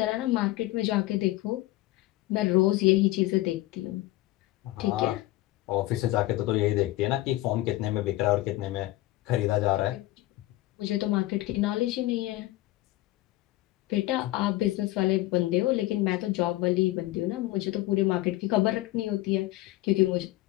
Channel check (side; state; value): right; quieter; 17.6 dB